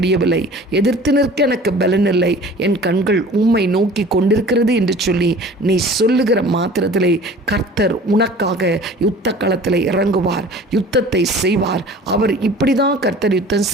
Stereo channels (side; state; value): both; normal; correlation 0.45